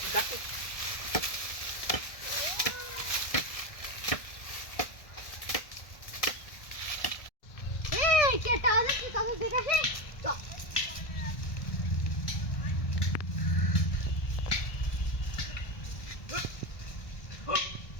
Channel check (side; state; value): right; late; 1.6 ms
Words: এই কে তাহলে কি কথা দেখাছে তো